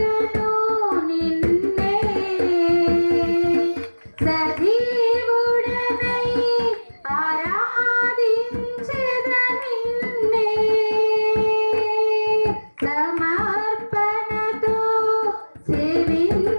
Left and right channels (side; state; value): both; inverted; correlation -1.00